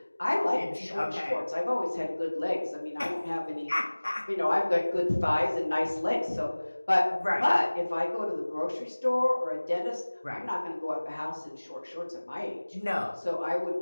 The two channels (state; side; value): inverted; both; correlation -1.00